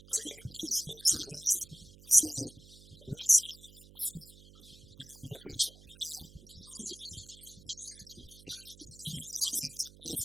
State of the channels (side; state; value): right; noise; hum, 21 dB below the sound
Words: and so you can page through your set list and see what song you want to perform, and then when you push play, you'll notice 2 things. It plays